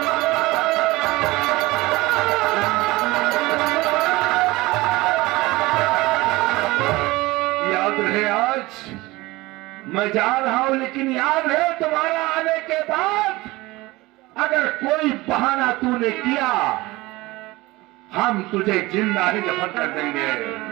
मैं जा रहा हूं, लेकिन याद है तुम्हारा आने के बाद अगर कोई बहाना तूने किया, हम तुझे जिंदा ही दफन कर देंगे।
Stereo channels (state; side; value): quieter; left; 20.6 dB